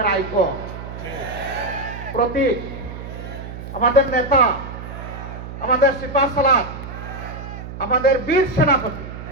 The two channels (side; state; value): right; noise; hum, 10 dB below the sound